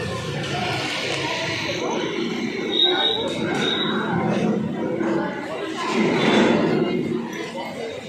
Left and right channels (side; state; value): both; identical; correlation 1.00